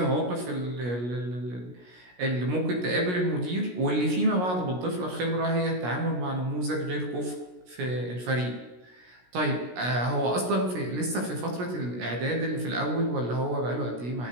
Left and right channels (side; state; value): left; late; 17 ms